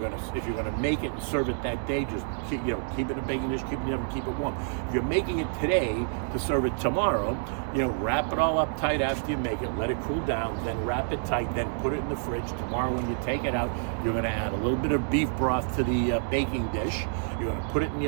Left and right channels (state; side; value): silent; left; digital silence